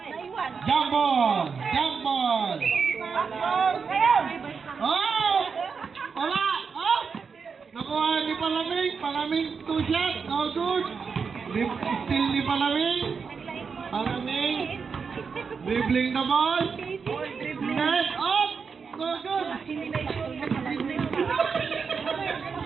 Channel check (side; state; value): left; quieter; 5.6 dB